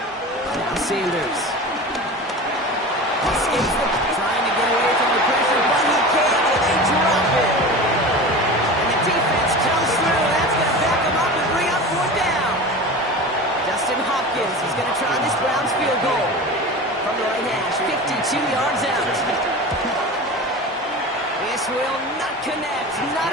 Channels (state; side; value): normal; both; correlation 0.32